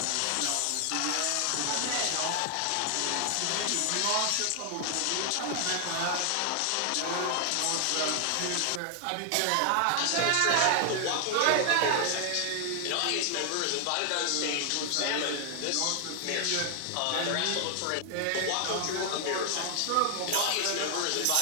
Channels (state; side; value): different; both; correlation 0.00